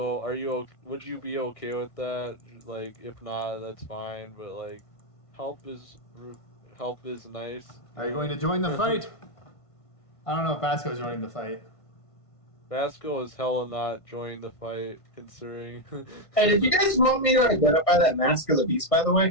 would you be okay with that? Like, if not, that's fine, but, like, help is nice. Are you going to join the fight? I don't know if Vasco's joining the fight. Vasco is hella not joining the fight, considering. Hey, did you guys want me to identify that Mask of the Beast, by the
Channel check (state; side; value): late; right; 1.5 ms